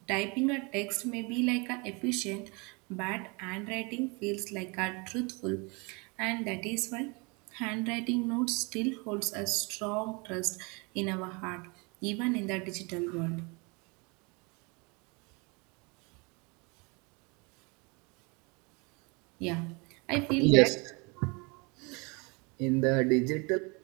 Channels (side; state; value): left; quieter; 29.6 dB